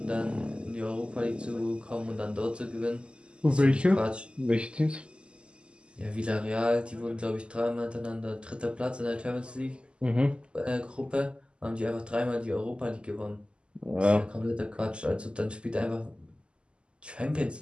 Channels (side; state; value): left; late; 0.052 ms